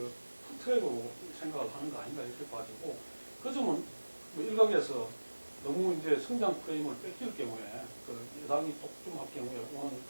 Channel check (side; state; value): both; inverted; correlation -1.00